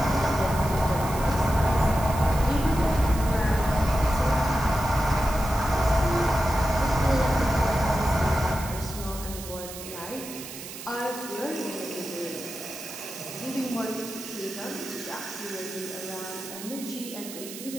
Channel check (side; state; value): right; noise; hiss, 12 dB below the sound